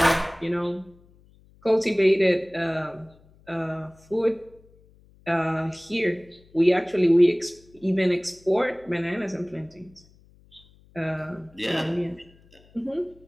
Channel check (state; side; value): noise; left; hum, 28 dB below the sound